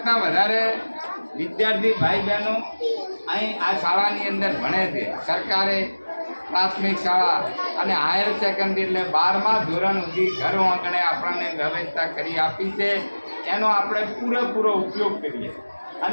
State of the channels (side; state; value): both; inverted; correlation -1.00